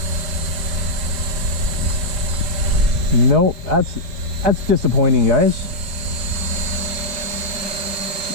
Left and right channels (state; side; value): late; left; 4.3 ms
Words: Nope, that's disappointing, guys.